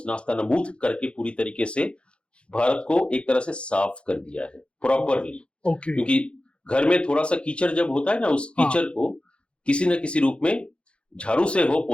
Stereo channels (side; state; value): right; late; 0.058 ms